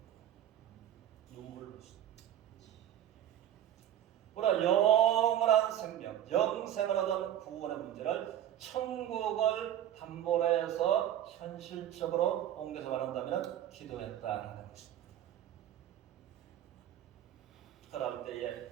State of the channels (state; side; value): quieter; left; 11.3 dB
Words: 눈물을 흘렸습니다. 우리가 영원한 생명, 영생을 얻은 구원의 문제를 천국을 담보로 해서 현실적으로 옮겨서 말한다면 기도했다는 것입니다. 그럴 때에